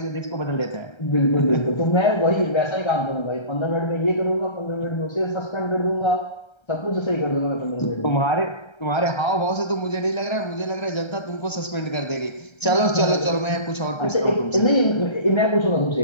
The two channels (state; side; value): late; right; 1.3 ms